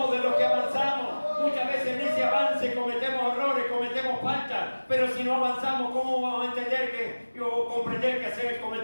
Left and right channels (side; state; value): both; inverted; correlation -1.00